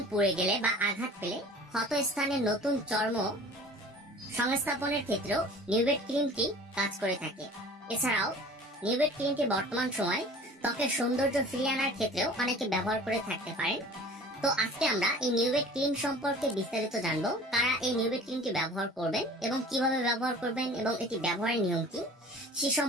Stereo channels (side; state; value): both; normal; correlation 0.44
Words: পুড়ে গেলে বা আঘাত পেলে ক্ষত স্থানে নতুন চর্ম সংস্থাপনের ক্ষেত্রেও নিউভেট ক্রিমটি কাজ করে থাকে। এছাড়াও নিউভেট ক্রিমটি বর্তমান সময় ত্বকের সৌন্দর্য ফিরিয়ে আনার ক্ষেত্রেও অনেকে ব্যবহার করে থাকতে পারেন। তো আজকে আমরা এই নিউভেট ক্রিম সম্পর্কে বিস্তারিত জানবো, কারা এই নিউভেট ক্রিমটি ব্যবহার করবেন এবং কিভাবে ব্যবহার করবেন এবং এটি ব্যবহারের নিয়ম কি সে